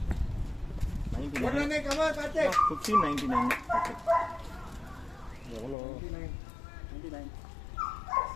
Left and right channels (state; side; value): drops out; right; at 5.8 s